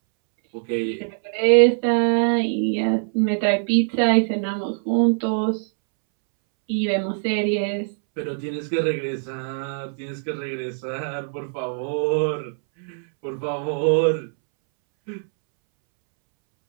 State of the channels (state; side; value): silent; left; 64 dB below the other